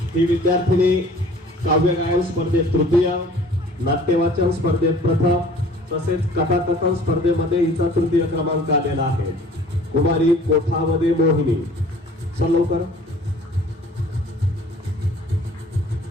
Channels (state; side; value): normal; both; correlation 0.50